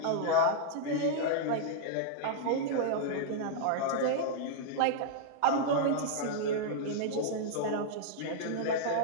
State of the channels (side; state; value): both; different; correlation -0.02